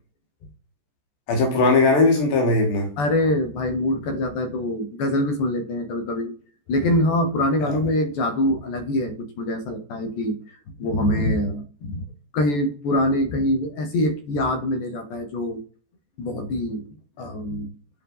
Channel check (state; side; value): late; right; 14 ms